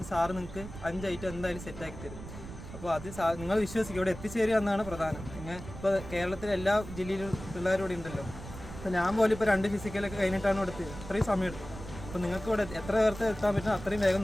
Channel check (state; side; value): noise; right; rumble, 12 dB below the sound